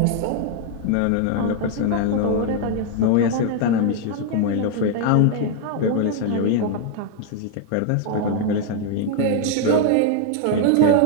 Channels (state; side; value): different; both; correlation 0.00